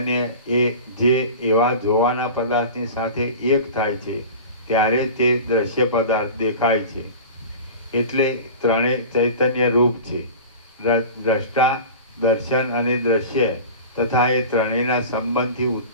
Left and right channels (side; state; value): both; inverted; correlation -0.35